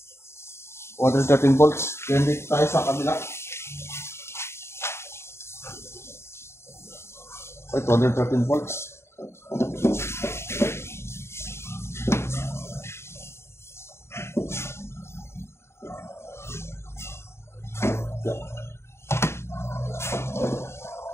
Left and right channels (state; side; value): late; right; 0.13 ms